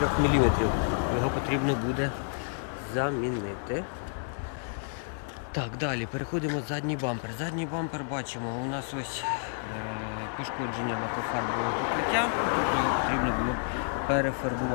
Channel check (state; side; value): silent; right; digital silence